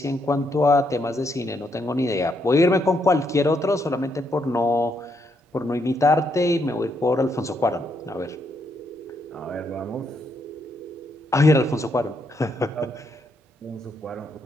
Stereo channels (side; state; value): both; normal; correlation 0.76